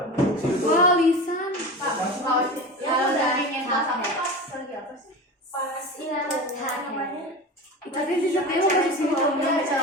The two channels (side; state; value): both; normal; correlation 0.29